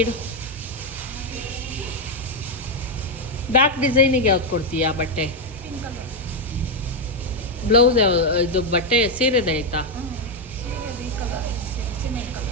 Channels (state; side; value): normal; both; correlation 0.03